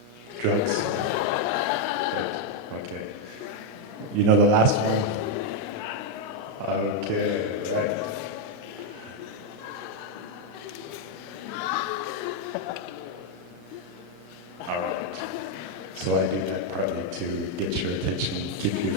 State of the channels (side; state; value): both; normal; correlation 0.01